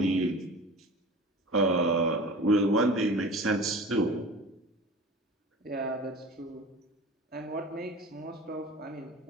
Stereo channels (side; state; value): both; normal; correlation 0.37